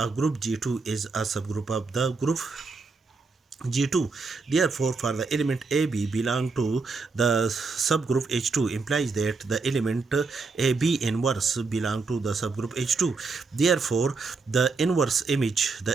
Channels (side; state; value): left; quieter; 4.3 dB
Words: group G2 is a subgroup of the group G2. Therefore, for the element AB belong to the subgroup H2 implies that the element AB inverse belong to the subgroup H2. Therefore, the inverse image